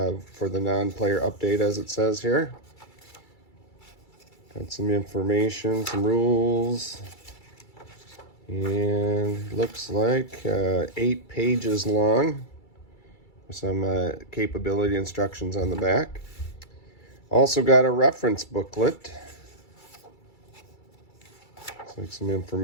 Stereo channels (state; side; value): late; right; 2.3 ms